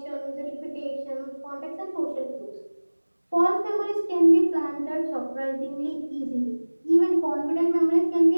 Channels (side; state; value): both; inverted; correlation -1.00